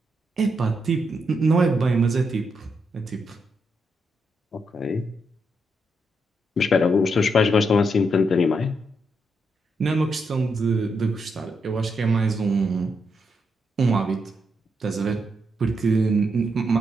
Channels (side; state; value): both; normal; correlation 0.81